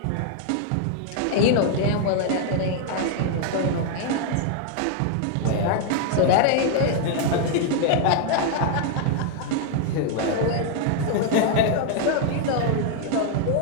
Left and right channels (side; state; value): both; different; correlation 0.00